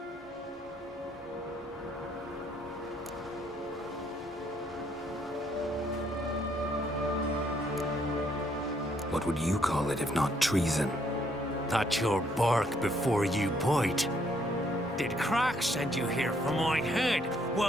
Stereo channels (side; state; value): both; normal; correlation 0.69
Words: What would you call it if not treason? That's your bark before you bite. Did Crack send you here for my head?